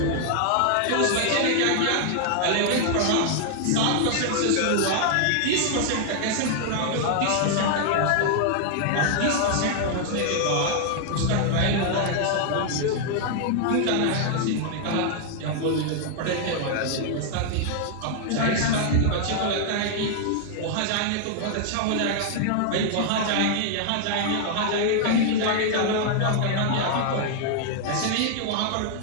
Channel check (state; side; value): different; both; correlation 0.00